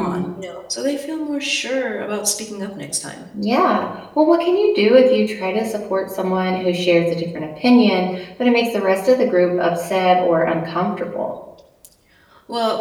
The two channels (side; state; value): both; identical; correlation 1.00